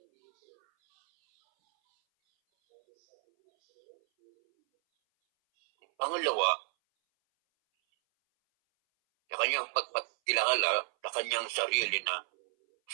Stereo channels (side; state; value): left; silent; 57 dB below the other